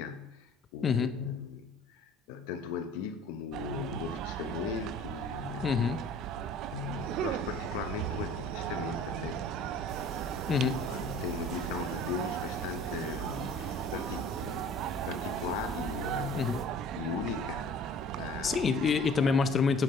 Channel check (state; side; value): normal; both; correlation 0.48